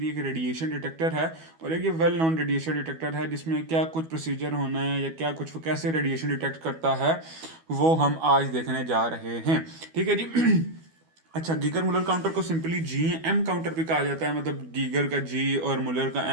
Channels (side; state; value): left; late; 12 ms